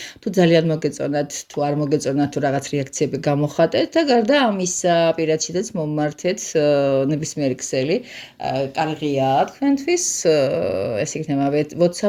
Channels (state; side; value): identical; both; correlation 1.00